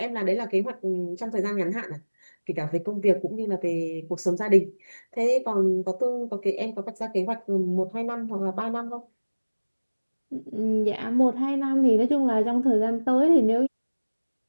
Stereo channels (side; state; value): both; inverted; correlation -1.00